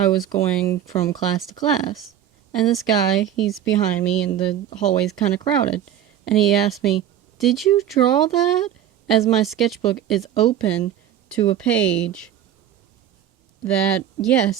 was going from class to class, and this guy, he's behind me, and the hallway's kind of crowded, and he asked me, "Did you draw that?" As my sketchbook is open to a page that,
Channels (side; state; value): left; quieter; 10.4 dB